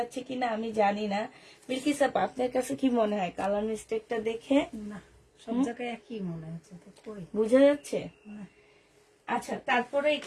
কিনা আমি জানি না। বিলকিস আপা আপনার কাছে কি মনে হয় কালার মিস্টেকটা দেখে? না, সব জায়গায় একই মনে হচ্ছে তো, কই বোঝা যাচ্ছে? না। আচ্ছা তারপরে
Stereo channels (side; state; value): both; identical; correlation 1.00